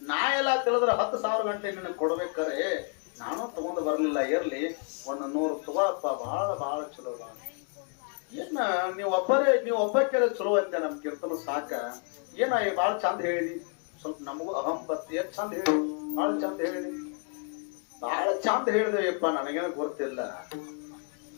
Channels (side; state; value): right; quieter; 38.3 dB